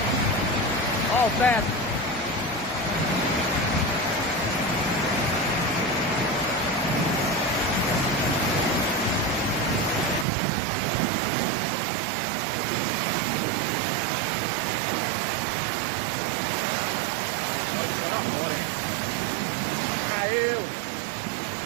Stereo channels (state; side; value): drops out; left; at 10.2 s